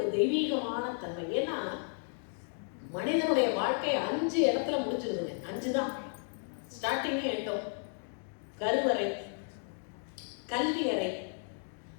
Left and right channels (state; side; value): silent; right; 55 dB below the other